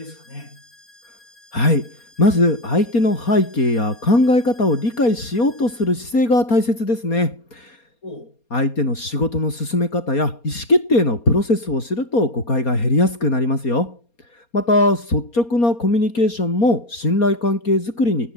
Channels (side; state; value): right; late; 4.3 ms